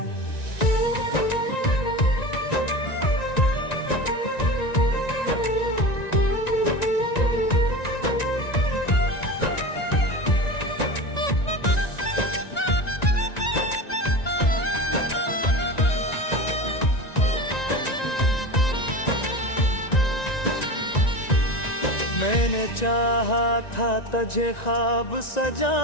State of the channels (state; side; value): late; right; 1.9 ms